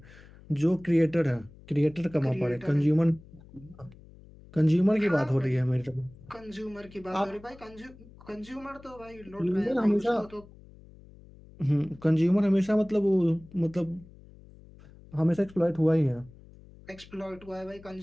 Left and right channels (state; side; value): noise; left; hum, 22 dB below the sound